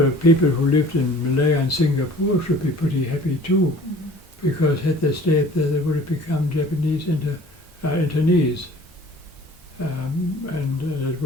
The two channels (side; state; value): both; normal; correlation 0.48